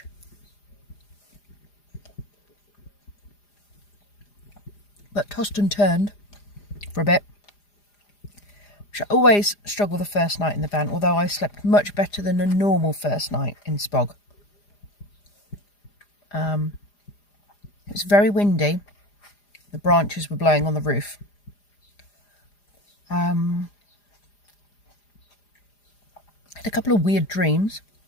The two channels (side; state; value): right; late; 4.9 ms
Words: But tossed and turned for a bit. Which I always struggle the first night in the van, although I slept much better than a normal first night in Spog. It was very windy. The branches were blowing on the roof. Had a couple of weird dreams.